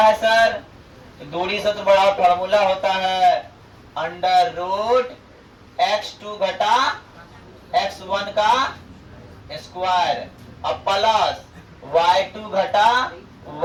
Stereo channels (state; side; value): identical; both; correlation 1.00